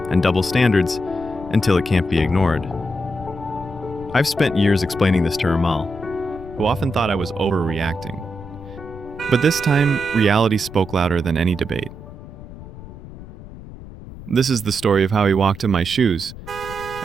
and double standards, until it can't be ignored. I've spent years explaining this to Ramal, who often thought I was overreacting. But this time, reality spoke louder than any debate. This is the story of how he walked in my shoes,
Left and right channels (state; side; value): noise; left; rumble, 15 dB below the sound